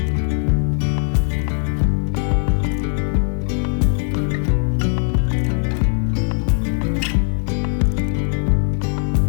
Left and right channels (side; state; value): right; silent; 56 dB below the other